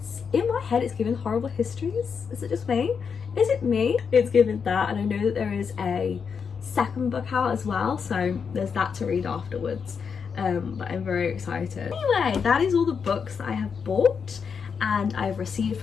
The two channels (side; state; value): right; quieter; 6.2 dB